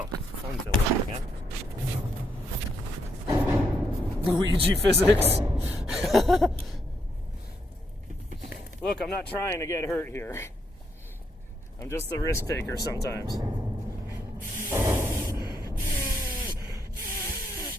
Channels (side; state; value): both; normal; correlation 0.77